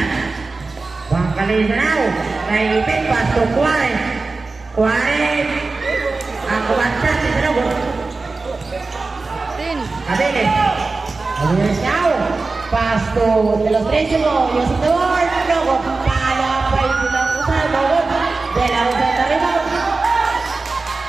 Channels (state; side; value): quieter; left; 3.8 dB